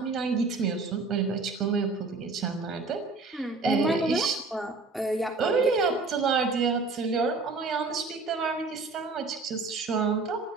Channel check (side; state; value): left; quieter; 3.8 dB